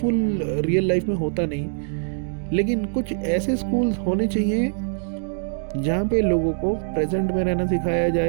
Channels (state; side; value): silent; left; digital silence